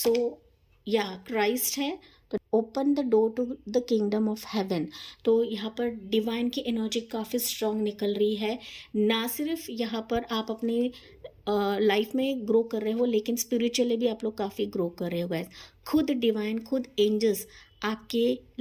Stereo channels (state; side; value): identical; both; correlation 1.00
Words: या क्राइस्ट है, तो open the door to the kingdom of heaven. तो यहाँ पर डिवाइन की एनर्जी काफ़ी स्ट्रांग निकल रही है। ना सिर्फ यहाँ पर आप अपने लाइफ में ग्रो कर रहे हो, लेकिन स्पिरिचुअली भी आप लोग काफ़ी ग्रो कर रहे हो गाइस। खुद डिवाइन, खुद एंजल्स आपके